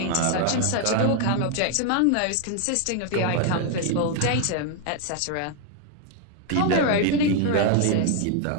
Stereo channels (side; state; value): both; different; correlation 0.00